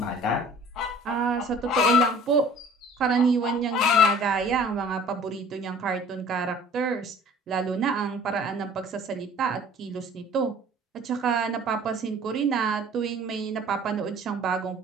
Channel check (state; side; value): normal; both; correlation 0.49